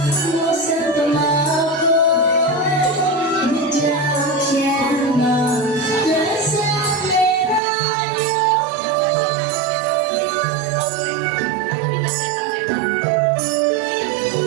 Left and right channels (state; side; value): drops out; left; at 7.6 s